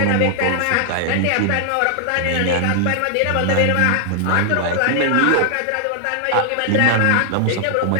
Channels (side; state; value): both; different; correlation 0.00